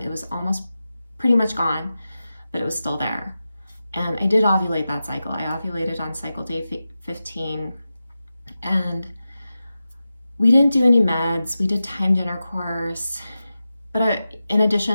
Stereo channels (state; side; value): inverted; both; correlation -0.93